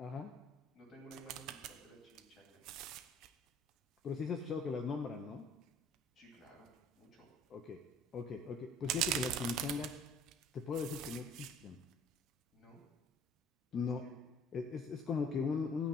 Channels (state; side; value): normal; both; correlation 0.55